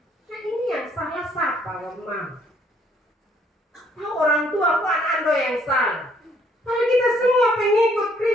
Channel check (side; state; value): both; normal; correlation 0.65